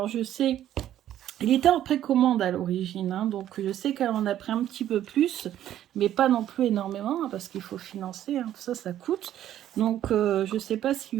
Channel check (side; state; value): left; quieter; 11.8 dB